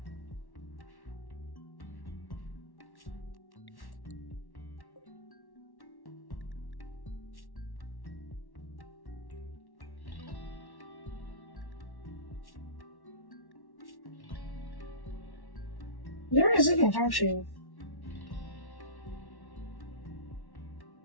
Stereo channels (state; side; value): late; right; 1.1 ms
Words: You're resilient, aren't you?